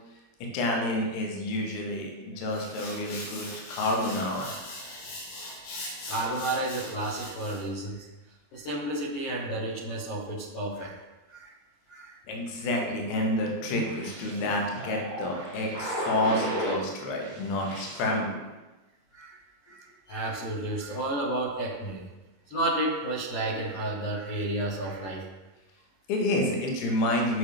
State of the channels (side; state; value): right; late; 22 ms